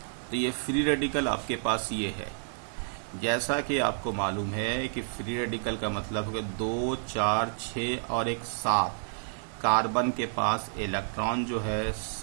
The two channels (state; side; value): silent; left; digital silence